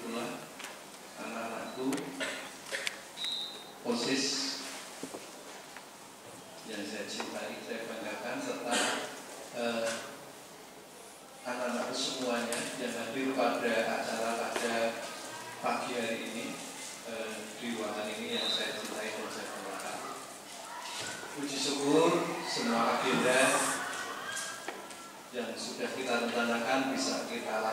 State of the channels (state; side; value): identical; both; correlation 1.00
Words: pula anak-anakku, OSIS yang saya cintai, saya banggakan, serta anak-anakku semuanya yang hadir pada acara pada pagi hari ini di ruangan ini yang saya cintai dan saya banggakan. Puji syukur semua agenda yang sudah kita rencanakan bisa kita